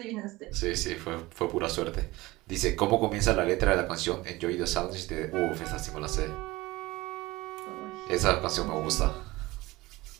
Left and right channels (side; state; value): left; quieter; 20.1 dB